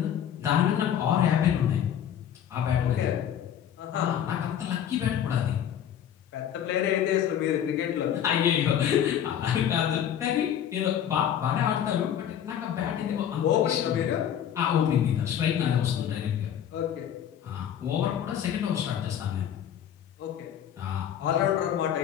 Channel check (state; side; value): quieter; right; 9.7 dB